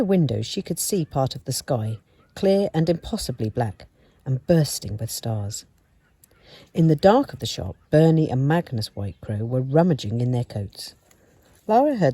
windows she could see part of the sky, clear and impossibly black, and bursting with stars. In the dark of the shop, Bernie and Magnus Whitecrow were rummaging in their coats. Lara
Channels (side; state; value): both; identical; correlation 1.00